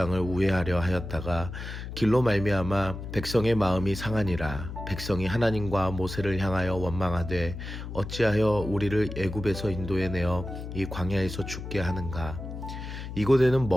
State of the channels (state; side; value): noise; left; hum, 8 dB below the sound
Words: 우회하려 하였다가 길로 말미암아 백성의 마음이 상하니라. 백성이 하나님과 모세를 향하여 원망하되 어찌하여 우리를 애굽에서 인도해 내어 이 광야에서 죽게 하는가. 이곳에는